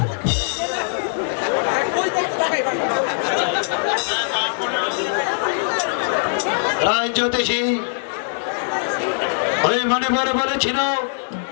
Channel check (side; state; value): right; silent; 59 dB below the other